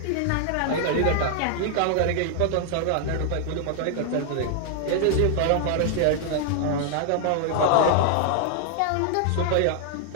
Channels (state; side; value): different; both; correlation 0.00